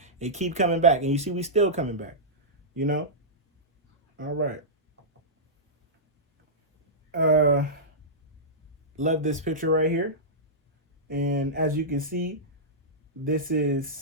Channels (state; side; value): normal; both; correlation -0.14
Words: they keep coming back. And you see we still coming back. You know? All right. Love this picture right here. And as you can see,